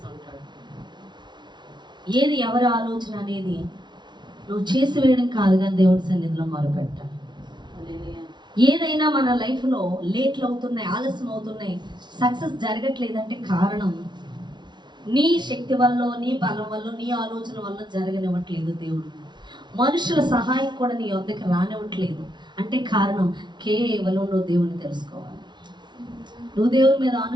ఏది ఎవరి ఆలోచన అనేది నువ్వు చేసి వేయడం కాదు, కానీ దేవుడి సన్నిధిలో మొరపెట్టాలి. ఏదైనా మన లైఫ్లో లేట్లు అవుతున్నాయి, ఆలస్యం అవుతున్నాయి, సక్సెస్ జరగట్లేదంటే కారణం నీ శక్తి వల్ల, నీ బలం వల్ల, నీ ఆలోచన వల్ల జరగనివ్వట్లేదు దేవుడు. మనుషుల సహాయం కూడా నీ వద్దకు రానివ్వట్లేదు అంటే కారణం కేవలం నువ్వు దేవుని తెలుసుకోవాలి, నువ్వు దేవుని మీద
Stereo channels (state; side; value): late; left; 0.21 ms